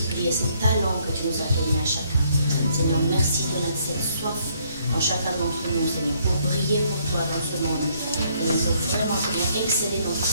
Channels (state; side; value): inverted; both; correlation -0.68